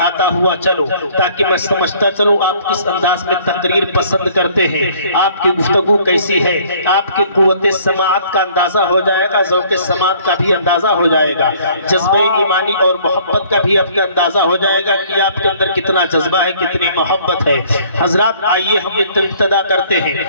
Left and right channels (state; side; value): inverted; both; correlation -0.57